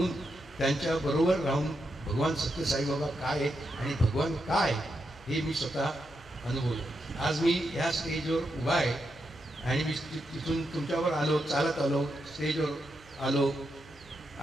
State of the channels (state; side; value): noise; left; hum, 25 dB below the sound